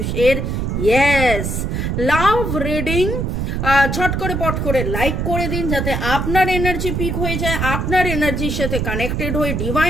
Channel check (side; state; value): right; noise; rumble, 1 dB below the sound